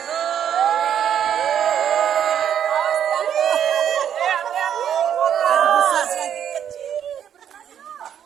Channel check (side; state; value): left; quieter; 9.3 dB